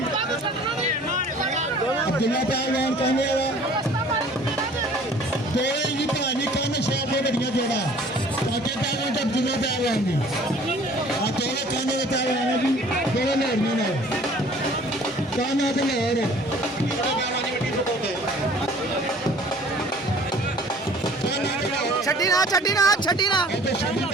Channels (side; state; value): both; normal; correlation 0.51